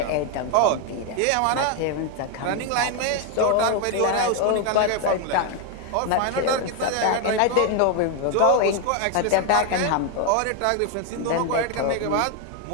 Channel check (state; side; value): different; both; correlation 0.01